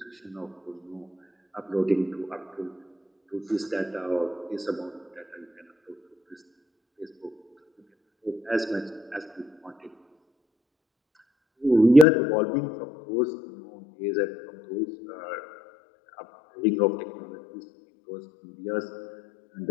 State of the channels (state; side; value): drops out; right; at 12.1 s